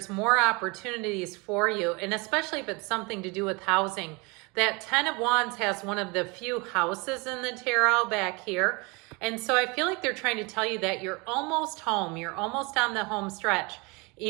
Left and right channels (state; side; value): quieter; left; 28.0 dB